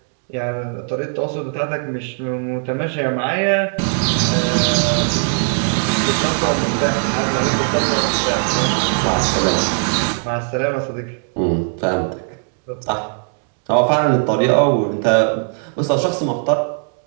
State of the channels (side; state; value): left; silent; 56 dB below the other